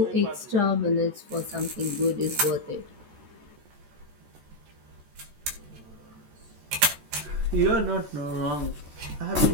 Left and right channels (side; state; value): left; late; 14 ms